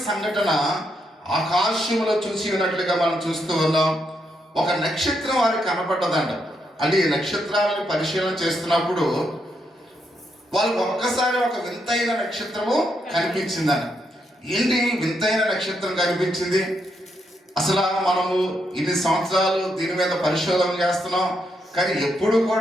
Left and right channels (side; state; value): both; normal; correlation 0.79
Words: సంఘటన ఆకాశంలో చూసి ఉన్నట్లుగా మనం చూస్తూ ఉన్నాం. ఒక నక్షత్రం వారికి కనపడ్డదంట. అంటే ఈ నక్షత్రాలను పరిశీలన చేస్తున్నప్పుడు వాళ్ళకి ఒక్కసారి ఒక వింతైన నక్షత్రము కనిపించిందంట. ఏంటి వింతైన నక్షత్రం కనిపించింది? అసలు మనము ఇన్ని సంవత్సరాలు దీని మీద పరిశోధన చేస్తున్నాం, కానీ ఎప్పుడు